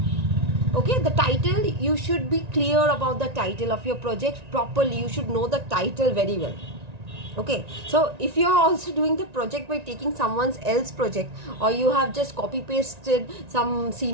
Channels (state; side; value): late; left; 1.9 ms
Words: Okay, the title, you should be clear about the title of your project properly. You should know the title very well. Okay, so if you are also doing the project by taking someone else's project, or you have just copy pasted some